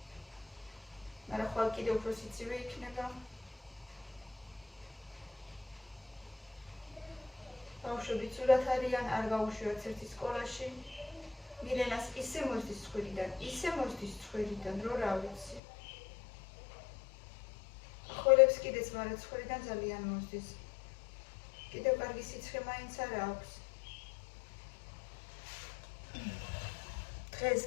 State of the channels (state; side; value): drops out; right; at 15.6 s